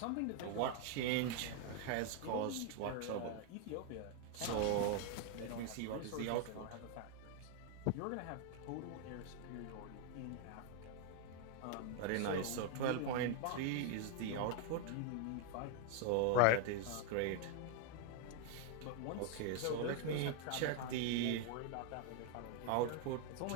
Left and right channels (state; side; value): different; both; correlation 0.00